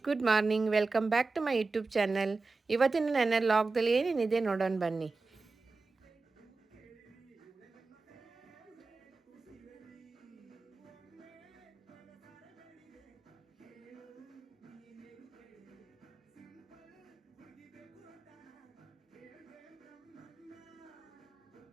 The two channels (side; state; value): left; quieter; 3.9 dB